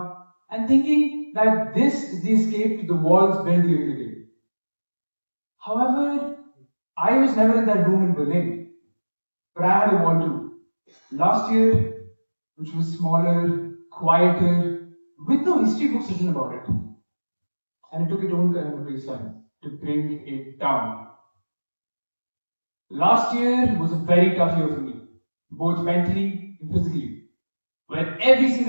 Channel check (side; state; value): both; inverted; correlation -1.00